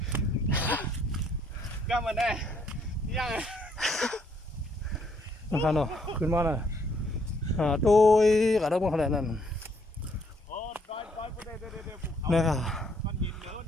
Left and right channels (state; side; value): normal; both; correlation 0.69